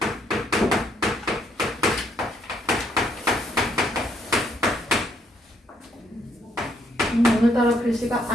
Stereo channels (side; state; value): both; normal; correlation 0.71